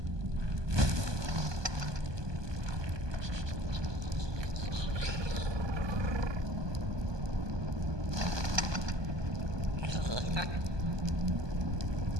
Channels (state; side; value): late; left; 1.2 ms